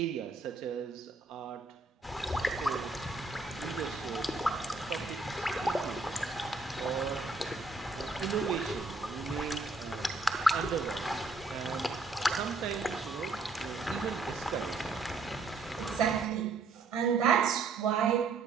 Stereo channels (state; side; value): quieter; left; 3.7 dB